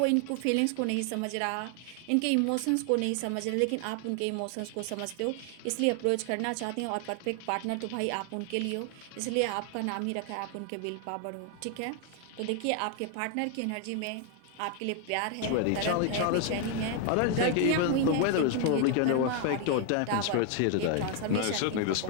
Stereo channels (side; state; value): both; different; correlation 0.00